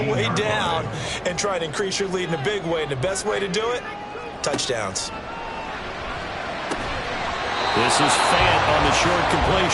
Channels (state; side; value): identical; both; correlation 1.00